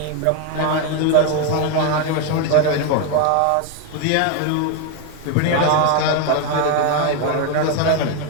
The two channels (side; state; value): both; different; correlation 0.02